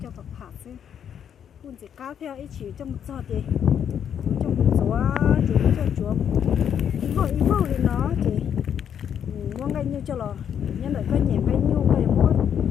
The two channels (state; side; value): quieter; right; 8.7 dB